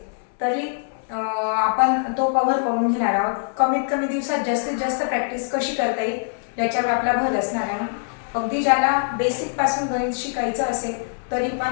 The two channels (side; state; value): right; silent; digital silence